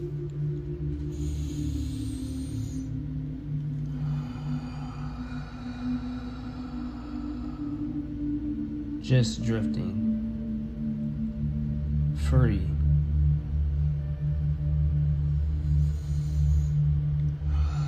Just drifting. Free.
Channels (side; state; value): both; identical; correlation 1.00